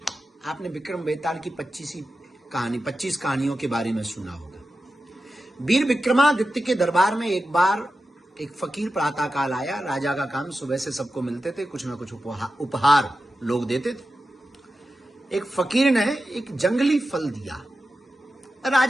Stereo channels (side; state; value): both; normal; correlation 0.92